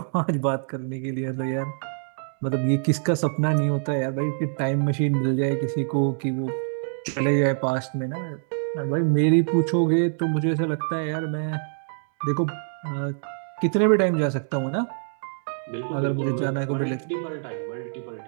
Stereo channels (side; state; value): left; silent; digital silence